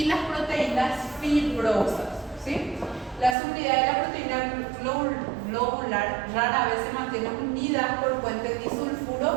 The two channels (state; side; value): drops out; left; at 3.4 s